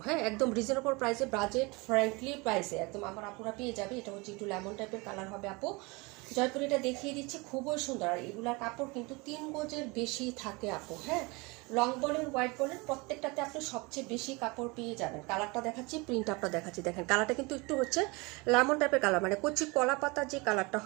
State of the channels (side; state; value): left; quieter; 26.4 dB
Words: হ্যাঁ, একদম রিজনেবল প্রাইসে, বাজেট ফ্রেন্ডলি প্রাইসে একদম আমার আপুরা পেয়ে যাবে। এটা হচ্ছে একটু লেমন টাইপের কালার হবে আপু। জয়পুর এটা দেখিয়ে দিচ্ছি, খুবই সুন্দর। আর এগুলার কাপড় কিন্তু 3 গজের বেশি থাকে আপু। হ্যাঁ, লং বলেন হোয়াইট বলেন প্রত্যেকটাতে আপনি সবচেয়ে বেশি কাপড় পেয়ে যাবেন। কালারটা দেখাচ্ছি, প্রিন্ট আপটা দেখাচ্ছি। দেখেন কালারটা কিন্তু একটু হচ্ছে লেমন টাইপের কালার, মানে কচি কলা পাতার যে কালারটা